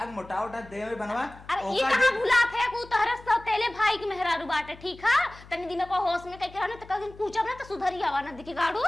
मोटा उटा दे में बनवा। अरे ये कहां भुला थे को तहरा सो तेले भाई के मेहरारू बाटे ठीक है तनी दिन को होश में कह के रहने त कहीं पूछब ना तो सुधरी आवा ना दिखे गाड़ू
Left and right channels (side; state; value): left; noise; hum, 20 dB below the sound